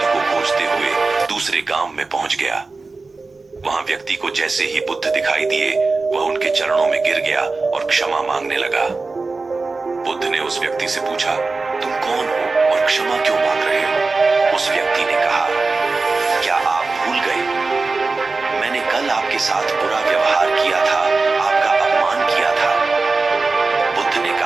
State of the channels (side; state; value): left; quieter; 3.8 dB